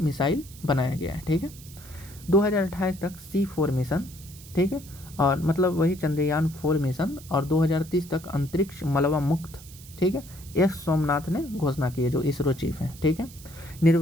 बनाया गया है, ठीक है। 2028 तक C4 मिशन, ठीक है, और मतलब वही चंद्रयान 4 मिशन, और 2030 तक अंतरिक्ष मलबा मुक्त, ठीक है। S सोमनाथ ने घोषणा की है जो इसरो चीफ हैं, ठीक है।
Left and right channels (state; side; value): noise; right; hiss, 19 dB below the sound